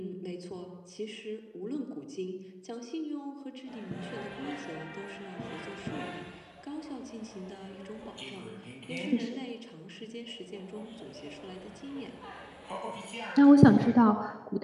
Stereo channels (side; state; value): both; identical; correlation 1.00